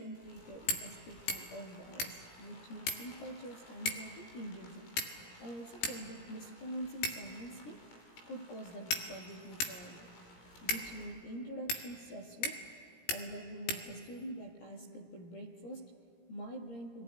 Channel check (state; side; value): late; right; 17 ms